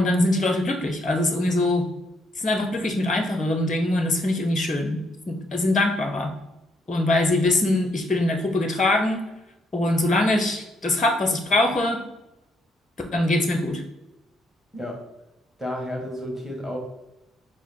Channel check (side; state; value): both; normal; correlation 0.73